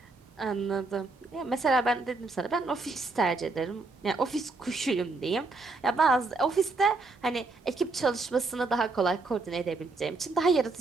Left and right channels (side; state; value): left; quieter; 3.6 dB